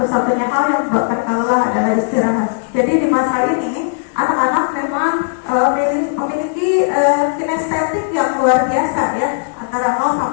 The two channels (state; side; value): silent; right; 69 dB below the other